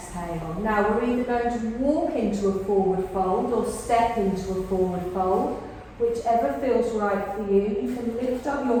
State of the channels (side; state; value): both; identical; correlation 1.00